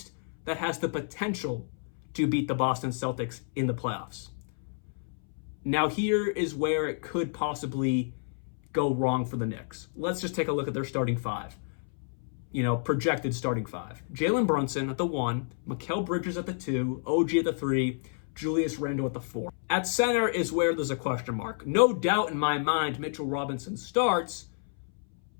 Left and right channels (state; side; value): silent; right; 58 dB below the other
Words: that has the potential to beat the Boston Celtics in the playoffs. Now here is where it could possibly go wrong for the Knicks. Let's just take a look at their starting five. Projected starting five. Jalen Brunson at the 1, Mikal Bridges at the 2, OG at the 3, Julius Randle at the 4. At center is where there's a question mark. No doubt in my mind, Mitchell Robinson starts,